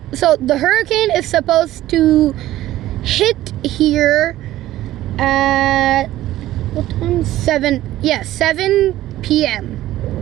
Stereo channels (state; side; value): quieter; left; 14.7 dB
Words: so the hurricane is supposed to hit here at, what time? 7 p.m.